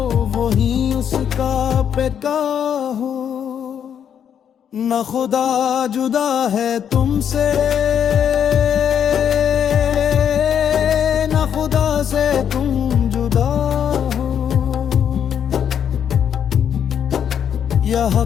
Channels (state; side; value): quieter; right; 8.6 dB